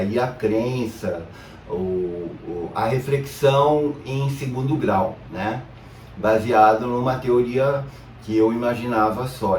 a crença, a reflexão em segundo grau, né? Baseado numa teoria que eu imaginava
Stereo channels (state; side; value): identical; both; correlation 1.00